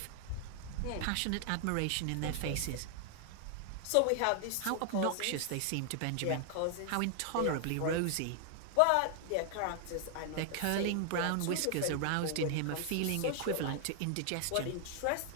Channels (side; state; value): both; different; correlation 0.00